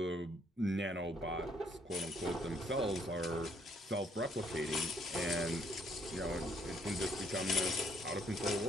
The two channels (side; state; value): both; normal; correlation 0.67